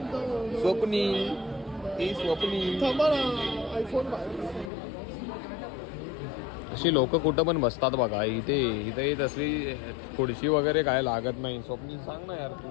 स्वप्नी अशी लोक कुठं पण बसतात बघा इथे येत असली खुर्ची वगैरे काय लागत नाही. स्वप्नी सांग ना यार तू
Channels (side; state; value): right; drops out; at 4.7 s